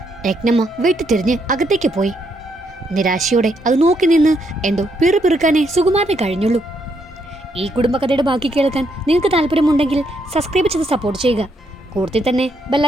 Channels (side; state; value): both; normal; correlation 0.75